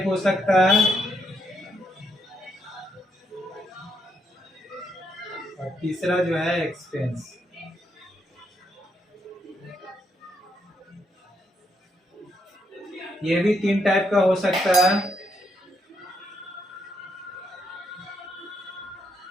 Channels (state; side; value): normal; both; correlation 0.77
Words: हो सकता है, और तीसरा जो है एक्सपेंस। ये भी तीन टाइप का हो सकता है।